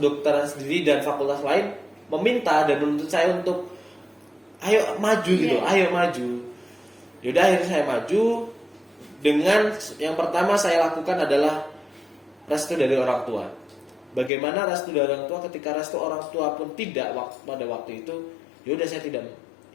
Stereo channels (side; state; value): right; drops out; at 14.3 s